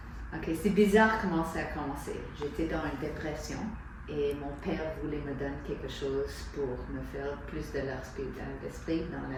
Ok, c'est bizarre comment ça a commencé. J'étais dans une dépression et mon père voulait me donner quelque chose pour me faire plus de l'esprit dans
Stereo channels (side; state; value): both; identical; correlation 1.00